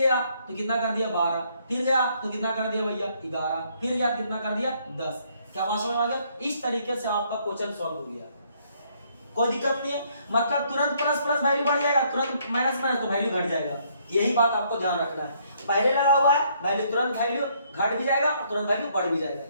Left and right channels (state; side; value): inverted; both; correlation -0.68